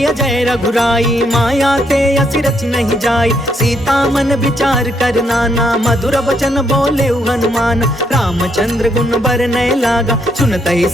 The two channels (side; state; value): both; normal; correlation 0.74